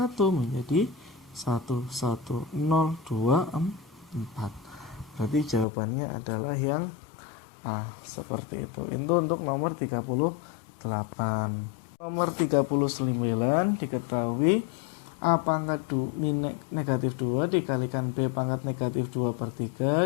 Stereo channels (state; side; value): drops out; right; at 5.7 s